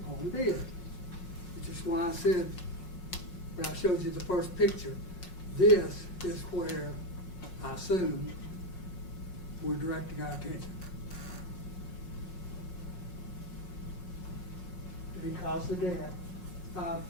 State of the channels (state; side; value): late; right; 5.5 ms